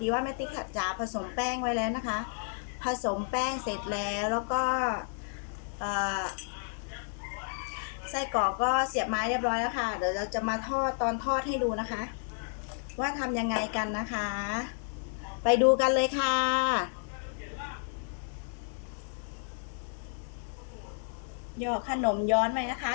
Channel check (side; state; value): right; silent; digital silence